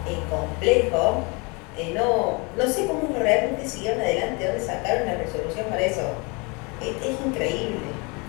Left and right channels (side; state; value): right; quieter; 29.8 dB